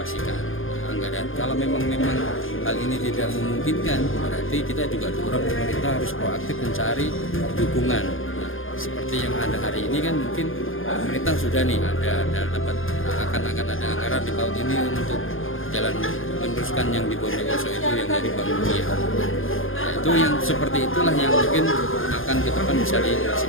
anggaran. Kalau memang hal ini tidak memungkinkan, berarti kita juga dorong pemerintah harus proaktif mencari dukungan. Nah, seperti yang ada hari ini kan mungkin pemerintah sudah nih ada dapat akan ada anggaran di tahun ini untuk jalan meneruskan yang di Bondowoso itu yang dari Bank Dunia. Nah, itu yang seperti itulah yang mungkin akan ke depan bisa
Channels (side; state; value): right; late; 0.59 ms